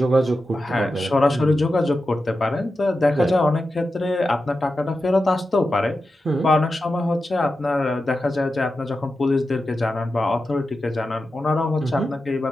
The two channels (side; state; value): both; normal; correlation 0.91